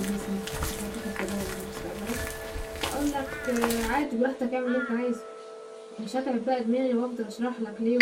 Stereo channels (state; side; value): identical; both; correlation 1.00